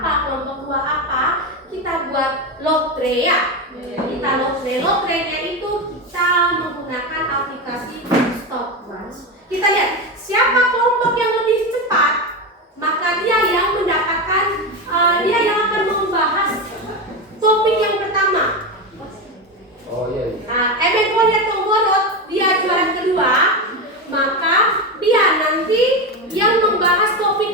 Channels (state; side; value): normal; both; correlation 0.16